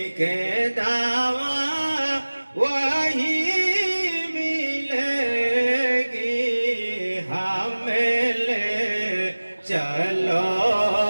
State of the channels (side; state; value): both; inverted; correlation -1.00